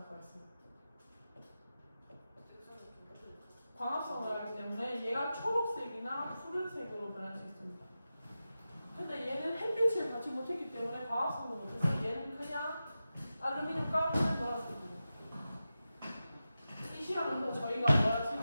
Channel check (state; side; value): inverted; both; correlation -0.92